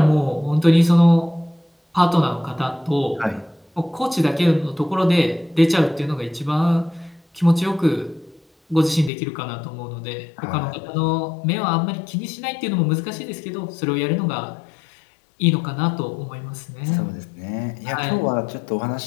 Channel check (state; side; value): drops out; right; at 9.1 s